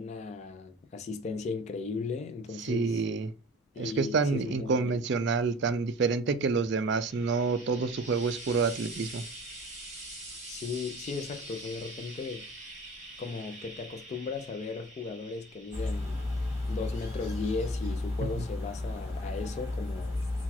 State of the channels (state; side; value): normal; both; correlation 0.43